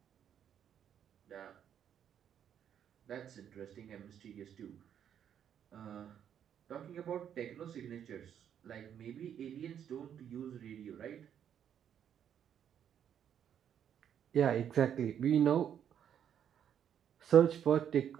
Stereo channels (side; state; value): left; quieter; 9.1 dB